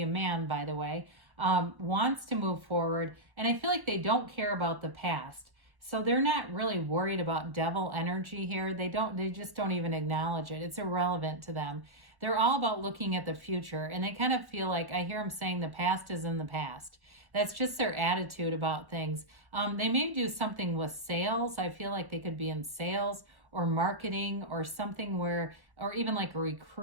a man, by the way, wants to move forward. And I feel like they don't care about the past. So they're not really worried about devil energy here. They just don't even acknowledge it. It's irrelevant to them. They're all about looking at the future. And they kind of feel like, I hear them saying the past is in the past. That's just their attitude about things. They may do something with sales. I feel like they could be in sales or marketing or something or even like a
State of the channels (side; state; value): left; late; 1.1 ms